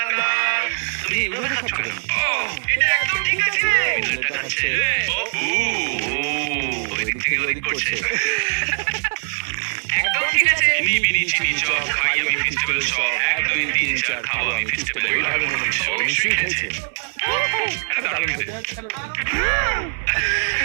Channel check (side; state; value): left; silent; 65 dB below the other